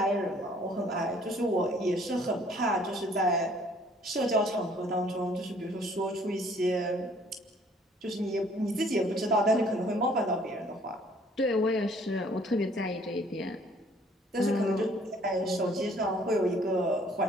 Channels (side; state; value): both; normal; correlation 0.59